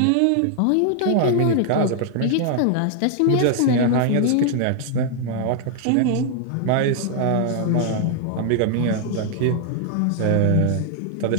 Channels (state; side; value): different; both; correlation 0.00